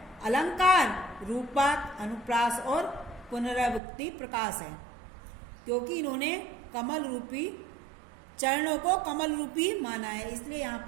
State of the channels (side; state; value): left; drops out; at 3.8 s